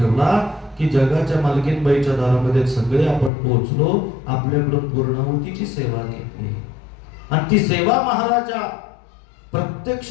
की जगाच्या मालकीनबाईच्या दारामध्ये सगळे आपण पोहोचलो. आपल्याकडून पूर्णाहुतीची सेवा घेतली आणि ती सेवा महाराजा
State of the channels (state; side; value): drops out; right; at 3.3 s